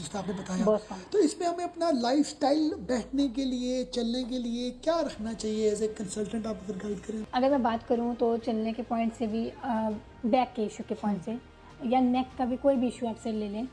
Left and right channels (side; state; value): both; identical; correlation 1.00